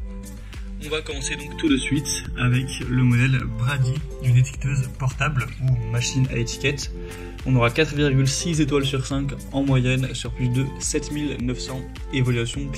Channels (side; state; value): both; identical; correlation 1.00